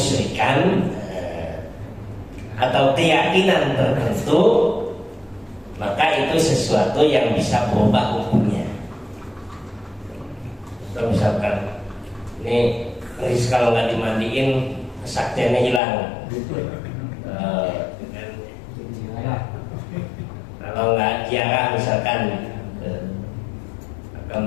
atau keyakinan tertentu, maka itu sesuatu yang bisa berubah hukumnya. So, misalkan ini keris kalau nggak dimandiin kesaktiannya hilang. Kalau nggak ziarah misalkan,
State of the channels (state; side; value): drops out; right; at 15.8 s